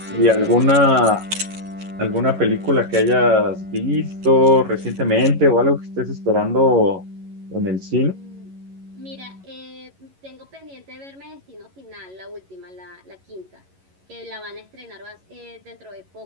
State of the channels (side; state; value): left; late; 11 ms